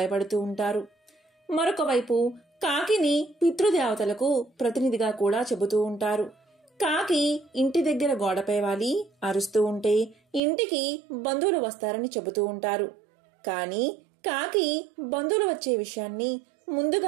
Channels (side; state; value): left; drops out; at 10.4 s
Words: ఉంటారు. మరొక వైపు కాకిని పితృదేవతలకు ప్రతినిధిగా కూడా చెబుతూ ఉంటారు. కాకి ఇంటి దగ్గర గోడపై వాలి అరుస్తూ ఉంటే ఇంటికి బంధువులు వస్తారని చెబుతూ ఉంటారు. కానీ కాకి బంధువులు వచ్చే విషయాన్ని